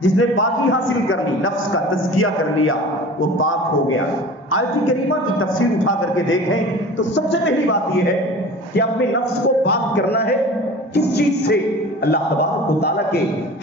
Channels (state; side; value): normal; both; correlation 0.39